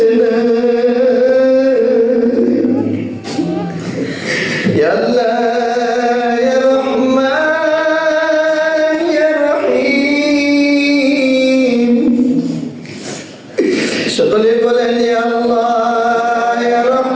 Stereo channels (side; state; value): both; identical; correlation 1.00